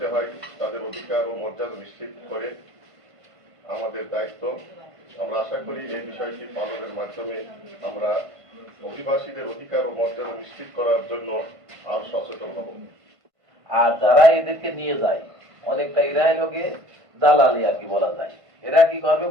হয়, তাদের অধিকার ও মর্যাদা নিশ্চিত করে আমাদের দায়িত্ব। আমরা আশা করি এই বিষয়টি পালনের মাধ্যমে আমরা অভিবাসীদের অধিকার ও মর্যাদা নিশ্চিত করার জন্য আরো সচেতন হব। আর যারা এদেরকে নিয়ে যায় অনেকটা এরাই লোকে দালালি আর কি বলা যায়। এরা কি করবে,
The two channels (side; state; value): left; late; 1.5 ms